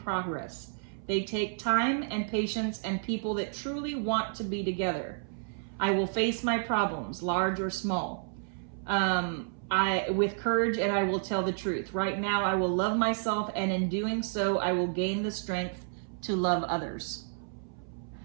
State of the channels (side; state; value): left; silent; 57 dB below the other